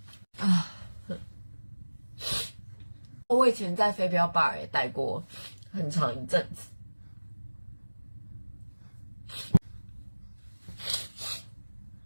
我以前在飞镖 bar 也待过很长一阵子。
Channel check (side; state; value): both; inverted; correlation -1.00